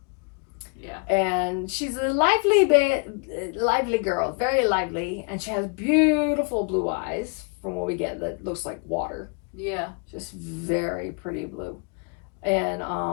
Yeah. And she's a lively girl, very lively, and she has beautiful blue eyes from what we get that looks like water. Yeah. Just very pretty blue. And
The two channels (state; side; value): quieter; right; 36.5 dB